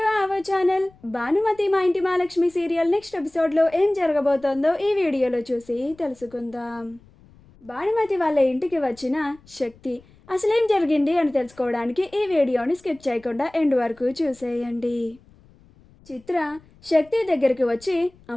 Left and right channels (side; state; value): left; noise; rumble, 27 dB below the sound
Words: our channel. Bhanumathi మా ఇంటి Mahalakshmi serial next ఎపిసోడ్లో ఏం జరగబోతోందో ఈ వీడియోలో చూసి తెలుసుకుందాం. భానుమతి వాళ్ళ ఇంటికి వచ్చిన శక్తి అసలేం జరిగింది అని తెలుసుకోవడానికి ఈ వీడియోని స్కిప్ చేయకుండా ఎండ్ వరకు చూసేయండి. చిత్ర శక్తి దగ్గరికి వచ్చి,